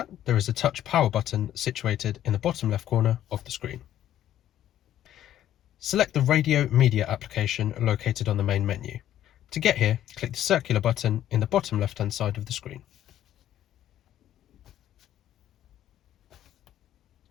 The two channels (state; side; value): quieter; right; 11.9 dB